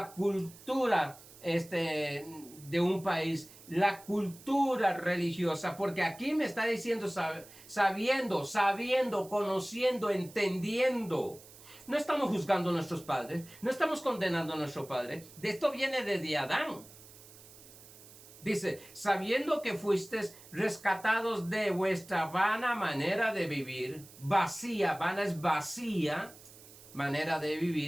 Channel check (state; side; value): noise; right; hiss, 20 dB below the sound